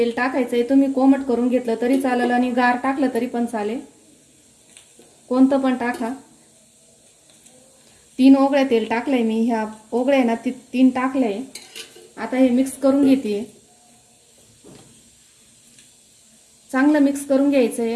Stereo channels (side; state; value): both; identical; correlation 1.00